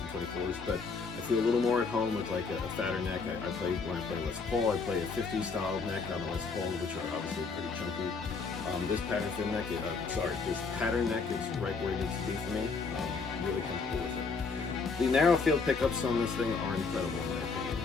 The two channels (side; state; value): right; quieter; 4.7 dB